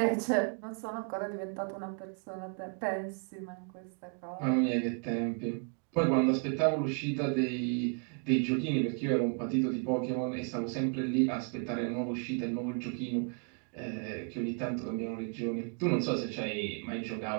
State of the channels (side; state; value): left; quieter; 39.1 dB